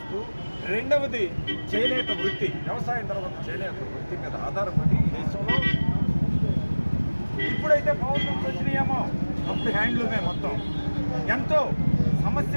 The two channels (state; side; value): inverted; both; correlation -1.00